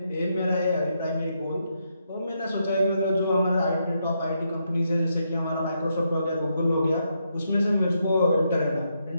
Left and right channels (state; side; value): inverted; both; correlation -0.79